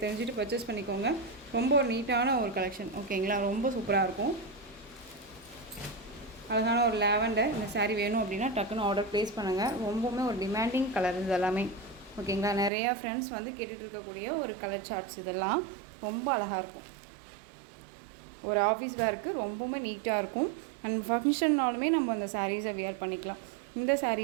தெரிஞ்சுட்டு பர்ச்சேஸ் பண்ணிக்கோங்க. ரொம்ப ஒரு நீட்டான ஒரு கலெக்ஷன், ஓகேங்களா? ரொம்ப சூப்பராக இருக்கும். அழகான ஒரு லாவெண்டர். இந்த சாரீ வேணும் அப்படின்னா டக்குன்னு ஆர்டர் ப்ளேஸ் பண்ணுங்கள். ரொம்பவுமே ஒரு டிமாண்டிங் கலர் இது எல்லாமே, ஓகேங்களா? நிறையா ஃப்ரெண்ட்ஸ் வந்து கேட்டுட்டு இருக்கக்கூடிய ஒரு கலர் சார்ட்ஸ். இதெல்லாம் ரொம்ப அழகாக இருக்கும். ஒரு ஆஃபீஸ் வேருக்கு ரொம்பவுமே நீட்டாக இருக்கும். அண்ட் ஃபங்க்ஷன்னாலுமே நம்ம அந்த சாரீஸை வியர் பண்ணிக்கலாம். இந்த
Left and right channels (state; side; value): drops out; left; at 12.7 s